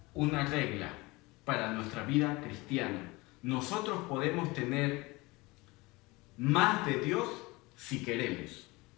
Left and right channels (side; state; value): right; quieter; 23.2 dB